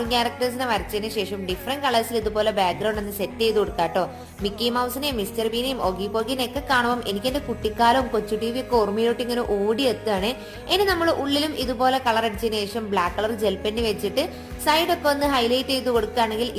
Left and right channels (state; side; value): identical; both; correlation 1.00